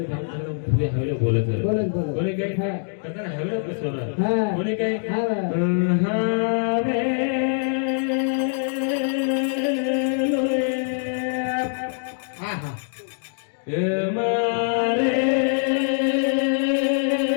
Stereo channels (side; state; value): right; silent; digital silence